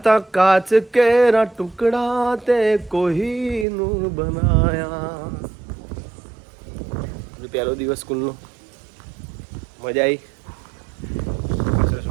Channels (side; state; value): left; drops out; at 3.7 s